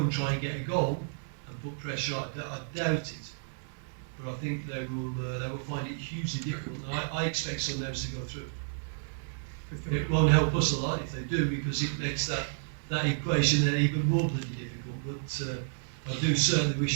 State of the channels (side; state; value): left; silent; digital silence